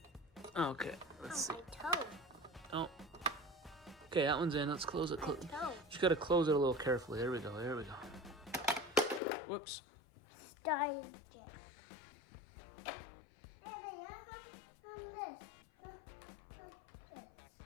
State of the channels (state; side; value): drops out; right; at 9.2 s